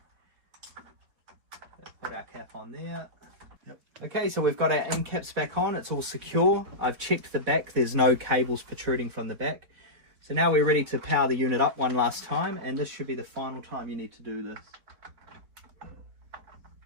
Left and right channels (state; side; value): late; left; 4.8 ms